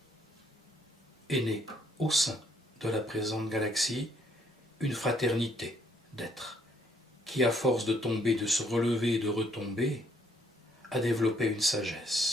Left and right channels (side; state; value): both; normal; correlation 0.68